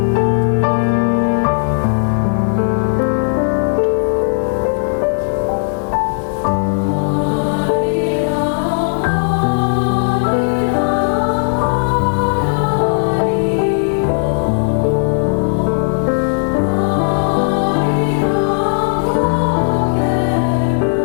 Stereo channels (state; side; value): silent; right; digital silence